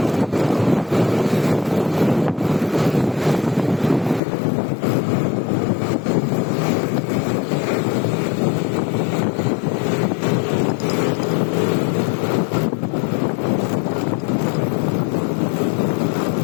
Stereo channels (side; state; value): right; drops out; at 4.2 s